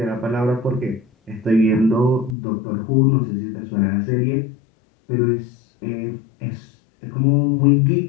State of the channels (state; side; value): drops out; right; at 2.4 s